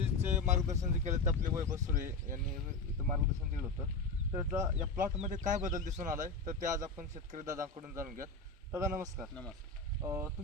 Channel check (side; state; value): right; quieter; 3.7 dB